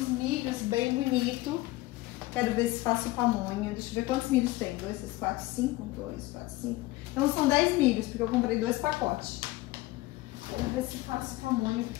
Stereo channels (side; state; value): right; quieter; 19.1 dB